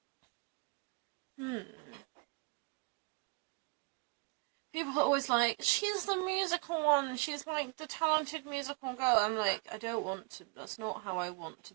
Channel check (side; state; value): left; quieter; 33.0 dB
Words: People are always like, she's the musical one, she's, like, the talented musical girl. I'm like, I don't want to, that's not how I want to